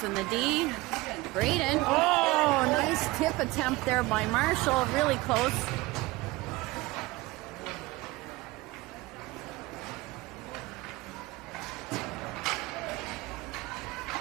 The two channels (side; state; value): left; quieter; 20.8 dB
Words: the D. Braden. Oh, nice tip attempt there by Marshall. Really close.